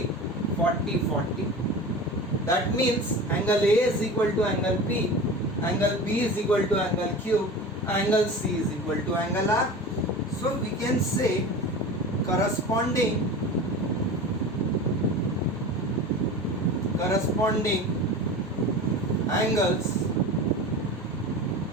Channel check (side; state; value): both; normal; correlation 0.32